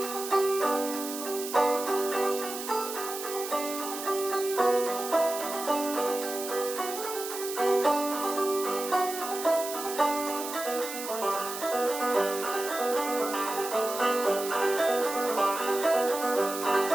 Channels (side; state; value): right; noise; hiss, 8 dB below the sound